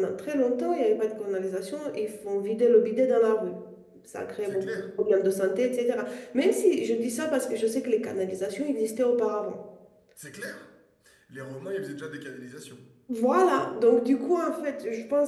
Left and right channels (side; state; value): both; identical; correlation 1.00